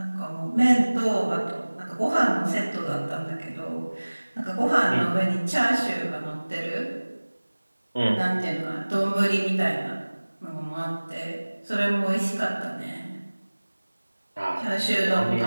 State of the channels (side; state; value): both; inverted; correlation -1.00